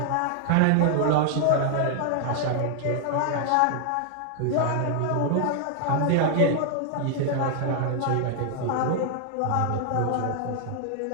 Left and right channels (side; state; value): both; different; correlation 0.00